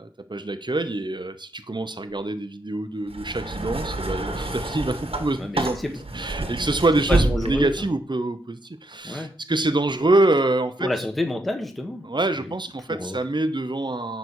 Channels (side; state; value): both; normal; correlation 0.76